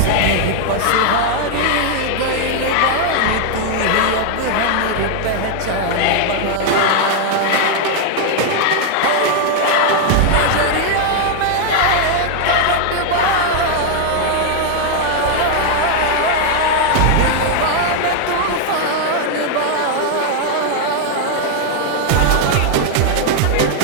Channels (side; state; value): both; different; correlation 0.00